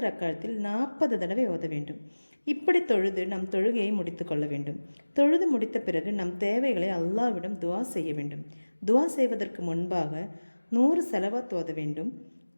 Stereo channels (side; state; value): both; inverted; correlation -1.00